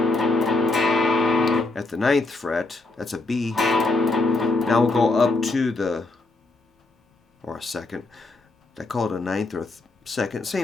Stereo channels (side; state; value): right; quieter; 3.2 dB